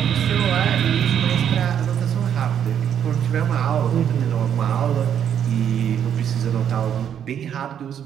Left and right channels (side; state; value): left; quieter; 9.0 dB